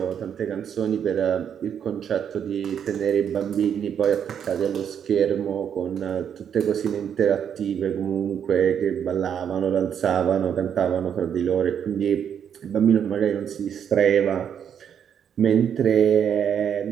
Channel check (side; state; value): left; quieter; 8.4 dB